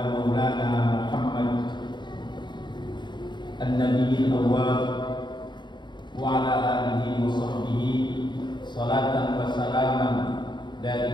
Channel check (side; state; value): right; late; 0.22 ms